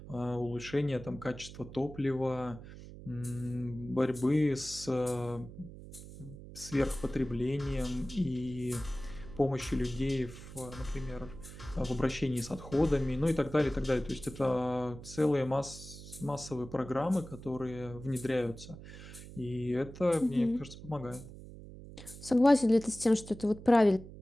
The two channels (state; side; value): noise; right; hum, 14 dB below the sound